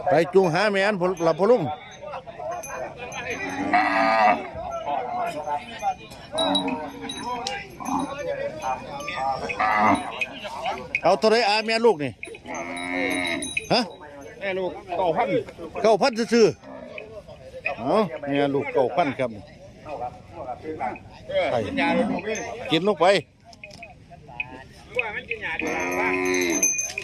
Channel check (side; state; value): both; identical; correlation 1.00